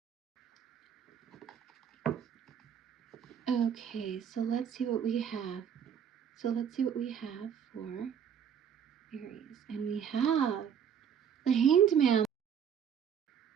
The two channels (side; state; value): left; quieter; 8.2 dB